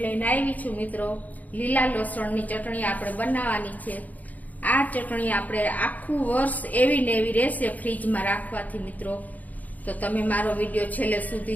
લઈને આવી છું મિત્રો। લીલા લસણની ચટણી આપણે બનાવવાની છે। આ ચટણી આપણે આખું વર્ષ એવી ને એવી રહેશે ફ્રીજમાં રાખવાથી મિત્રો। તો તમે મારો વિડીયો છેલ્લે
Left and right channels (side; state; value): right; late; 0.078 ms